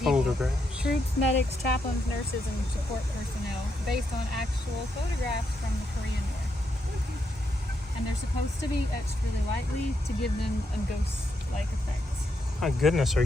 photographs. Troops, medics, chaplains, nurses, and support personnel, based on actual photographs from the Korean War. And they're supposed to be etched really lightly to give them a ghost-like effect. My goodness, are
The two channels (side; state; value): both; normal; correlation 0.80